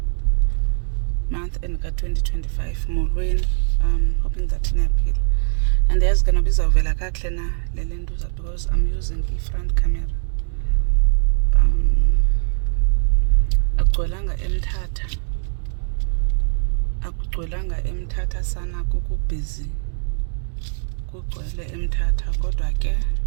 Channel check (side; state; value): left; silent; 65 dB below the other